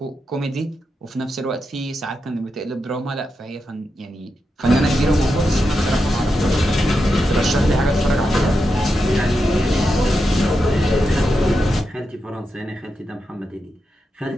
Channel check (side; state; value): both; normal; correlation 0.87